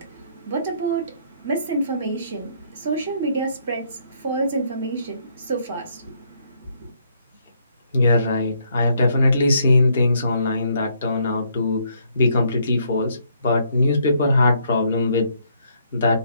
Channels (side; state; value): both; inverted; correlation -0.70